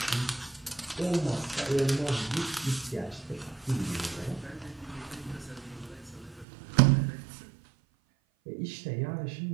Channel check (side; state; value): left; drops out; at 6.5 s